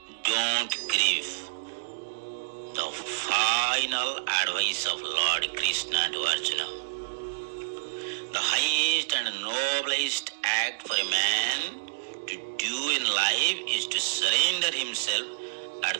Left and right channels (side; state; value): left; quieter; 33.9 dB